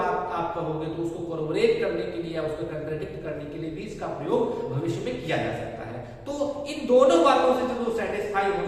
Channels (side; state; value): both; identical; correlation 1.00